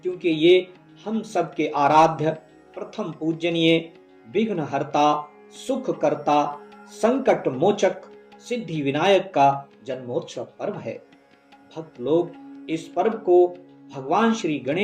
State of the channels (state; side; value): identical; both; correlation 1.00